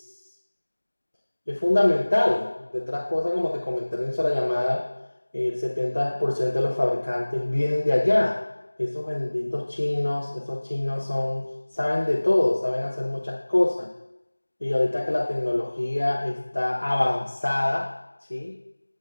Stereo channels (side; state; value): both; inverted; correlation -1.00